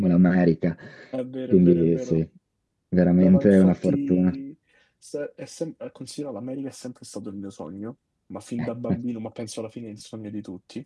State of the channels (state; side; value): identical; both; correlation 1.00